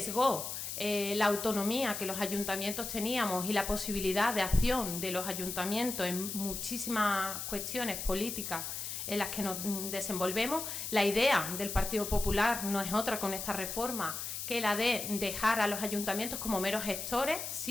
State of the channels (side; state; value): left; noise; hiss, 5 dB below the sound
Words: la autonomía que los ayuntamientos teníamos y la posibilidad de acción de los ayuntamientos en muchísimas cuestiones políticas en las que nos desenvolvemos. La idea del Partido Popular no es otra con esta reforma que la de dejar a los ayuntamientos como meros gestores,